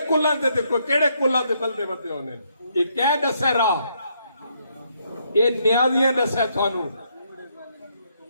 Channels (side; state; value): both; inverted; correlation -0.74